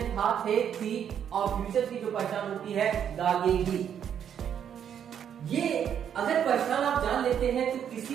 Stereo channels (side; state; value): left; quieter; 8.8 dB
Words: था, थे, थी और फ्यूचर की जो पहचान होती है दागेगी। ये अगर पहचान आप जान लेते हैं तो किसी